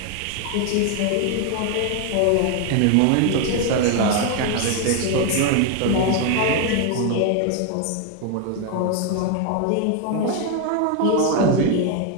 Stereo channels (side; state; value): both; different; correlation 0.01